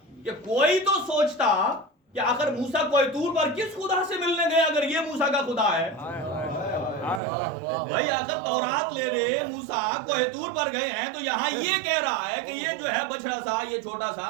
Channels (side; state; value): left; drops out; at 7.2 s